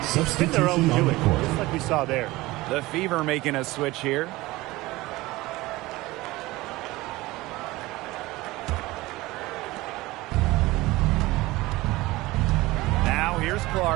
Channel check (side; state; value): left; quieter; 19.7 dB